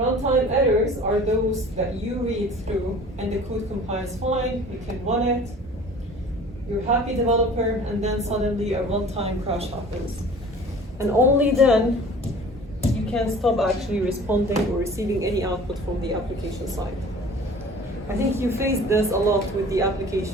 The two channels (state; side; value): normal; both; correlation 0.45